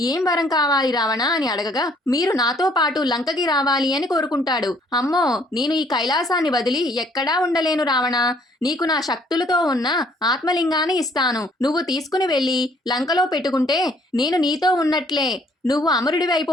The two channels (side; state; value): both; normal; correlation 0.62